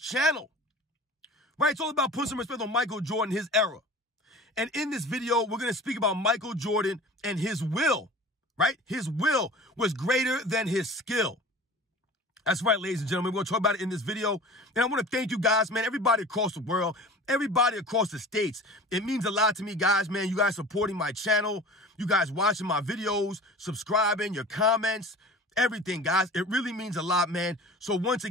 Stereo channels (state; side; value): normal; both; correlation 0.39